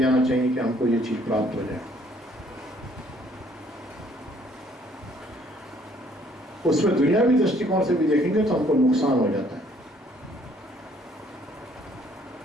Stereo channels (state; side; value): normal; both; correlation 0.62